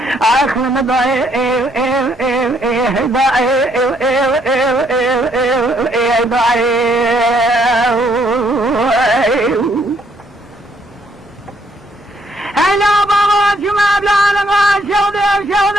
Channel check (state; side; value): normal; both; correlation 0.69